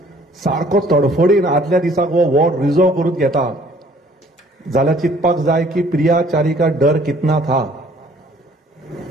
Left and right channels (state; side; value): normal; both; correlation 0.58